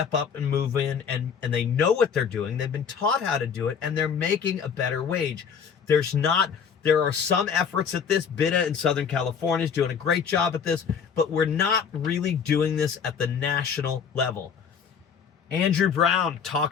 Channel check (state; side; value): quieter; right; 6.9 dB